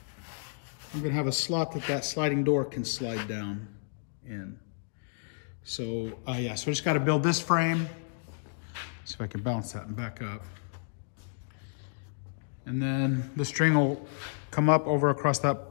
I'm gonna have a slot that sliding door can slide down in. So yeah, so I just gotta build this frame. See if I can bounce that and back up. And then the string will come up over across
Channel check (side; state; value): right; silent; digital silence